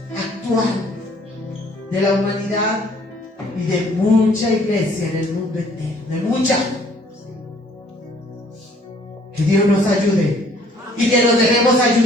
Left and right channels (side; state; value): both; normal; correlation 0.59